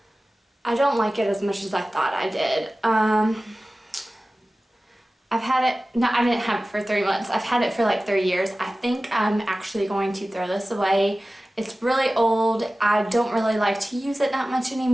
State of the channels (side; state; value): both; normal; correlation 0.96